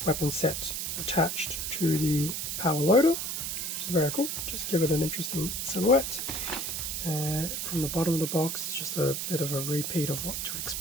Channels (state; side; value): noise; right; hiss, 3 dB below the sound